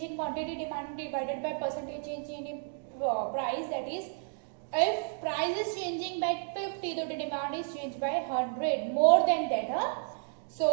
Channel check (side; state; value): left; silent; digital silence